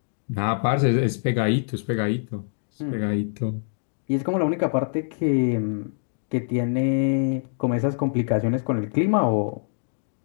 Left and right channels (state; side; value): silent; right; digital silence